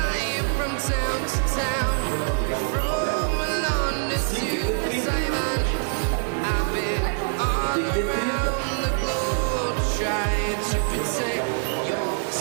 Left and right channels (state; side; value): silent; left; 62 dB below the other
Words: from town to town.